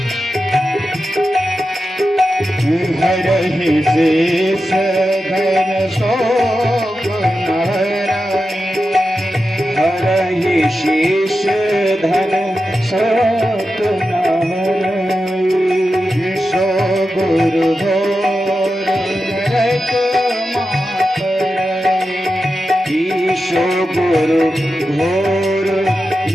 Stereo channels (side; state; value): both; normal; correlation 0.91